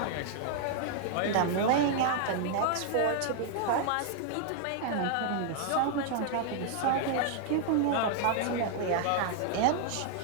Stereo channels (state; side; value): different; both; correlation 0.00